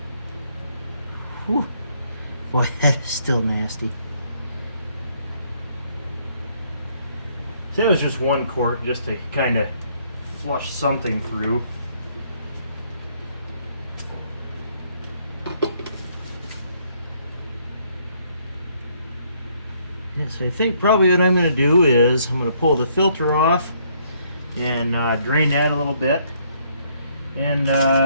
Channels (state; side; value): inverted; both; correlation -0.68